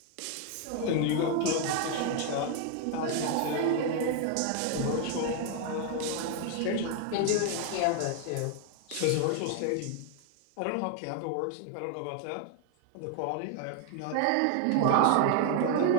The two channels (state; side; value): different; both; correlation 0.00